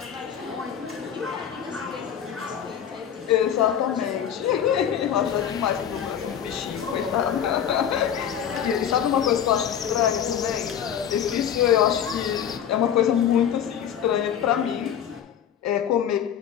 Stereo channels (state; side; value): quieter; right; 9.0 dB